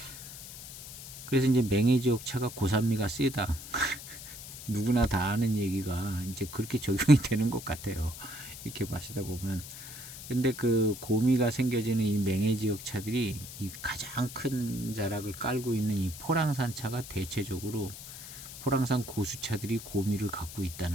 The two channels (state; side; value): noise; left; hiss, 12 dB below the sound